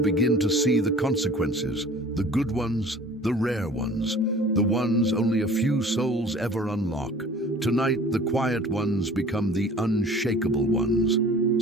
begin to see the consequences, the good ones, the rare ones, the ones only a few souls ever unlock. Tonight, the quiet ones become the unshakable ones.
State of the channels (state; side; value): normal; both; correlation 0.47